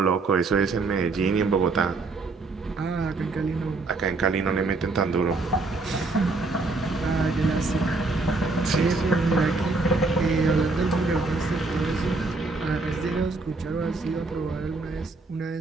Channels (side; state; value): left; quieter; 3.6 dB